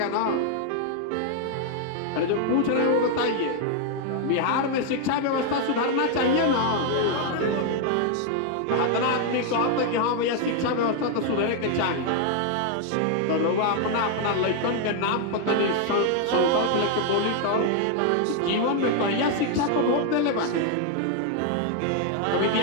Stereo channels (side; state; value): both; different; correlation 0.00